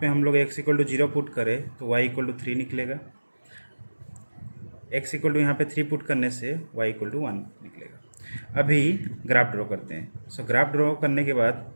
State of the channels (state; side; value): inverted; both; correlation -1.00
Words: हम लोग x = 0 पुट करें तो y = 3 निकलेगा, x = यहाँ पे 3 पुट करने से y = 1 निकलेगा। अभी ग्राफ ड्रॉ करते हैं। सो ग्राफ ड्रॉ करने के बाद